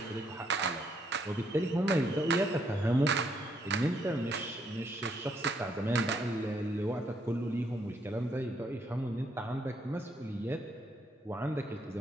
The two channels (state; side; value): normal; both; correlation 0.72